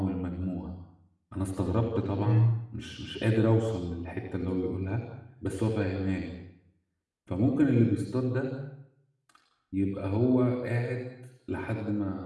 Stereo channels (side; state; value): both; identical; correlation 1.00